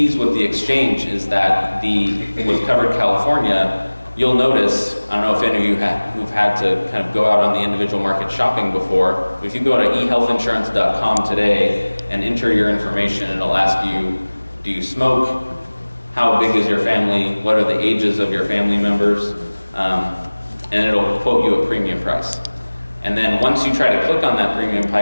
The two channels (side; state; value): both; inverted; correlation -1.00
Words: with the exchange is that with Covered California, you'll notice, I don't know if any of you who've had to kind of go out on the individual market shopping before, but if you go to ehealthinsurance.com today and enter your information, it'll ask you, do you smoke? How big is your family? What are the ages of your family members? And it'll quote you a premium price. And then once you try to click on that premium